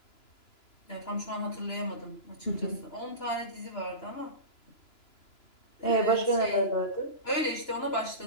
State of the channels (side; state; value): right; late; 2.9 ms